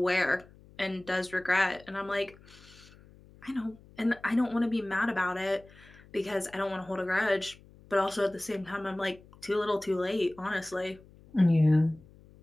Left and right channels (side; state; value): left; noise; hum, 24 dB below the sound